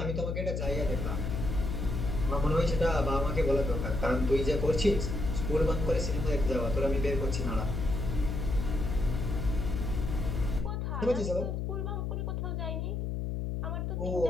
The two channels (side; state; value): left; noise; hum, 2 dB below the sound